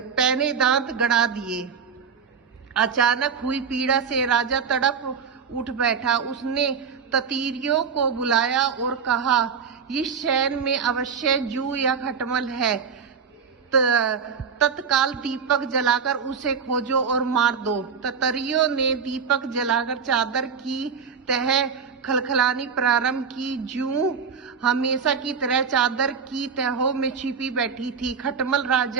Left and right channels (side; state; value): left; quieter; 6.3 dB